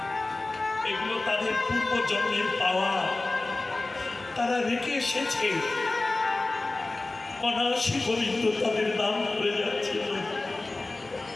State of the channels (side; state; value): right; quieter; 3.1 dB